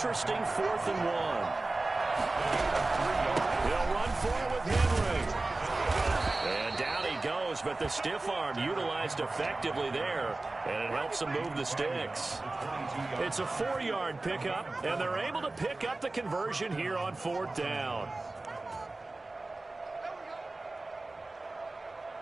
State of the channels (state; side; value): quieter; left; 3.1 dB